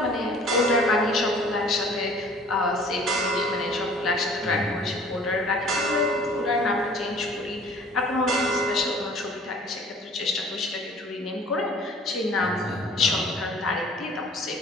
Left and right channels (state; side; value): normal; both; correlation 0.50